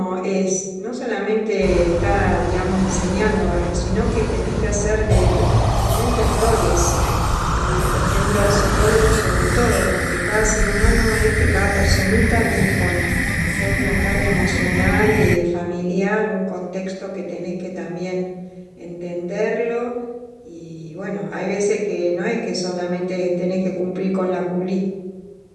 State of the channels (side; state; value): both; identical; correlation 1.00